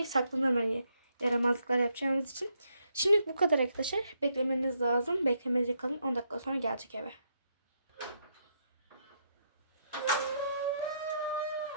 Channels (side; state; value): both; inverted; correlation -0.77